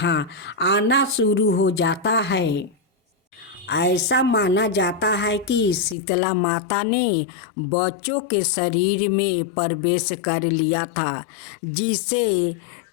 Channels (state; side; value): drops out; right; at 6.0 s